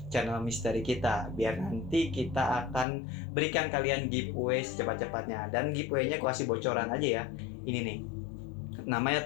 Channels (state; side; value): drops out; right; at 2.9 s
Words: channel misteri kita biar nanti kita akan berikan kalian giveaway secepat-cepatnya. Dan giveaway-nya gue kasih bocoran aja ya. Ini nih,